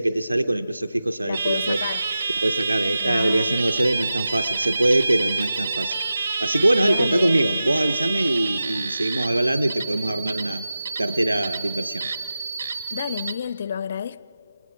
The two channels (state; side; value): inverted; both; correlation -0.93